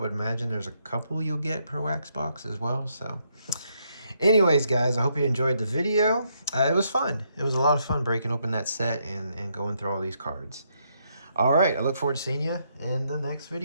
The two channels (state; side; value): inverted; both; correlation -0.76